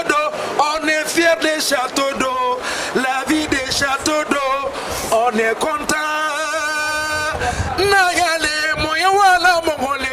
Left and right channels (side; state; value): both; identical; correlation 1.00